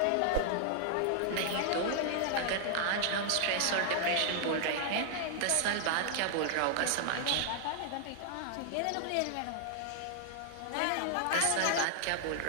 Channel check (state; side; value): different; both; correlation 0.00